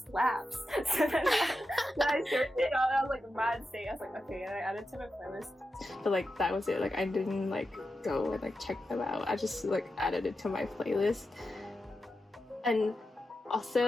So then I searched it out, and I was like, Mansei. I was like, okay, and I added to my playlist. But like that was it. Like I didn't like go and like check them out. I just like added it to my playlist. And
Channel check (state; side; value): normal; both; correlation 0.90